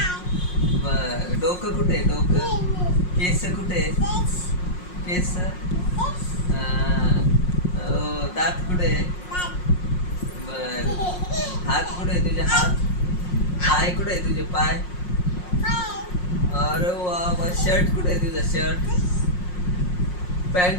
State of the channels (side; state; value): right; late; 5.5 ms